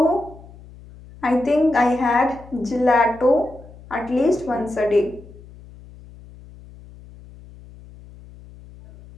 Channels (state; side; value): noise; left; hum, 20 dB below the sound